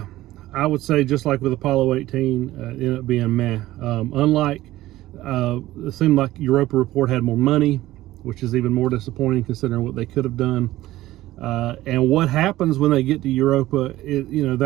I would say just like with Apollo 18, it ended up being meh. It seemed like Europa Report had more money, which is even more disappointing considering what they could have done. And what happens when they get to Europa,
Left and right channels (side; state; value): left; quieter; 16.0 dB